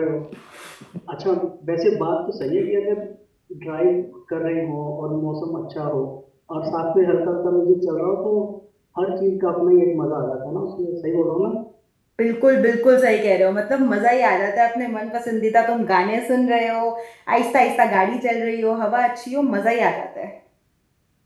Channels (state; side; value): identical; both; correlation 1.00